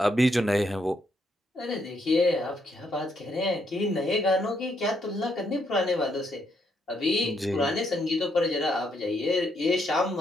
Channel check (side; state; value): both; normal; correlation 0.75